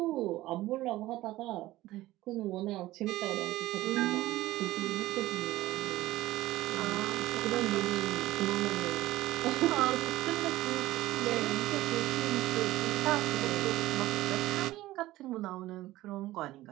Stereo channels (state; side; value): quieter; left; 16.6 dB